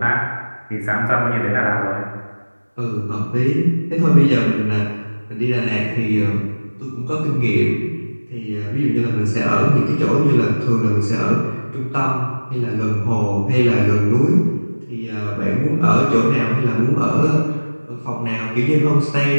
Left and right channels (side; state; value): both; inverted; correlation -1.00